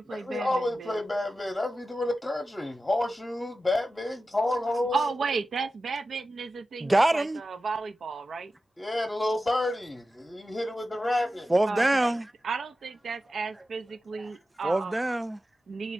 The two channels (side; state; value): both; normal; correlation 0.93